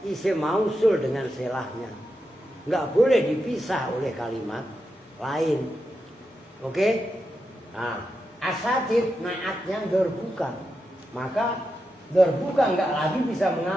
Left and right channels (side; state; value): both; normal; correlation 0.87